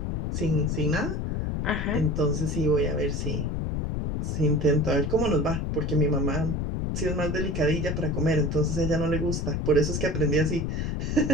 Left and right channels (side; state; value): left; noise; rumble, 1 dB below the sound